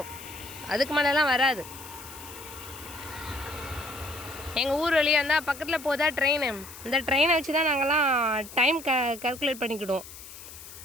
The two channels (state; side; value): noise; left; hiss, 15 dB below the sound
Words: அதுக்கு மேலெலாம் வராது. எங்கள் ஊர் வழியாக இருந்தால் பக்கத்தில் போதா ட்ரெயின். இந்த ட்ரெயினை வச்சு தான் நாங்கள்லாம் டைம் கால்குலேட் பண்ணிக்கிடுவோம்.